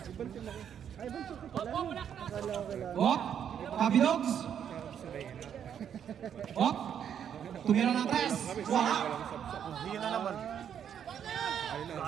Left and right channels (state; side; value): quieter; left; 8.8 dB